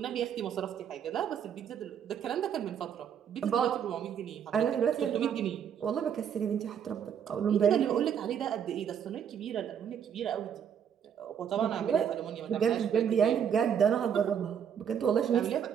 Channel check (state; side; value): quieter; left; 8.3 dB